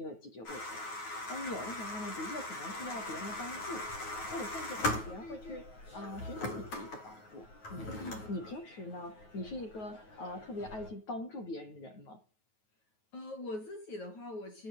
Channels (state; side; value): late; right; 9.3 ms